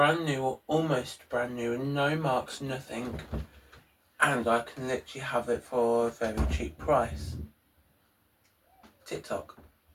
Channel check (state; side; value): identical; both; correlation 1.00